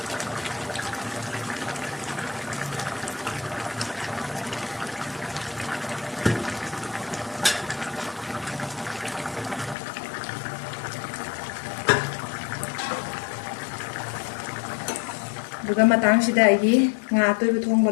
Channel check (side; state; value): right; drops out; at 9.8 s